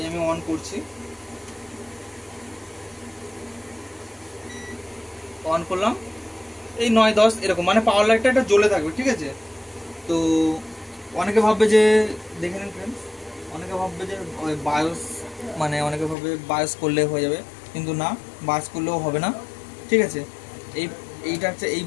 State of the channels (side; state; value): right; drops out; at 16.2 s